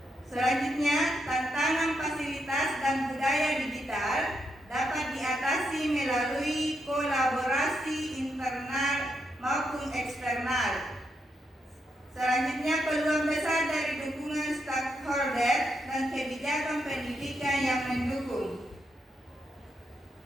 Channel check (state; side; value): normal; both; correlation 0.81